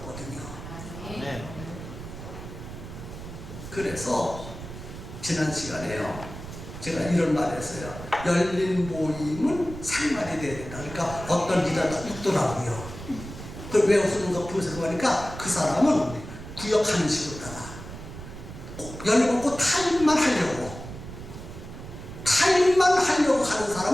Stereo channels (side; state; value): right; noise; rumble, 12 dB below the sound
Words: 그래서 지난 시간에요, 제가 이런 말을 했어요. 열린 모임은 생활이 돼야 된다. 그러니까 어떤 리더가 웃더라고요. 그걸 왜 웃는가 분석하니까 그 사람은 구역하는 식으로 따라 열려놓고 타임만 하려고 하는